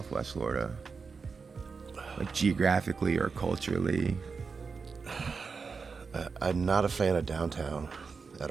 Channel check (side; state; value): left; quieter; 5.0 dB